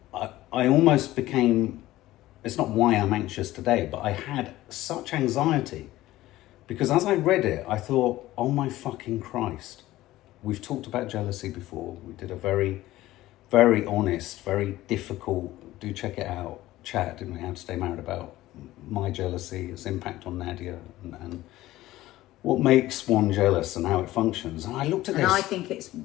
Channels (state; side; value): quieter; right; 16.1 dB